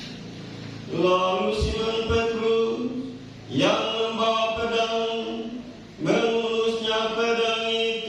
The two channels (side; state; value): both; identical; correlation 1.00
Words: Lalu Simon Petrus yang membawa pedang menghunusnya pedang